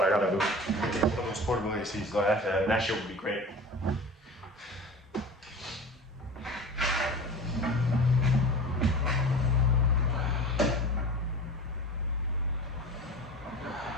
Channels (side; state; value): both; normal; correlation 0.35